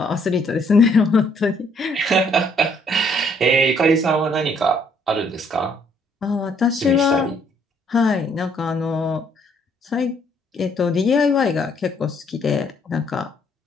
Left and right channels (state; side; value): normal; both; correlation 0.66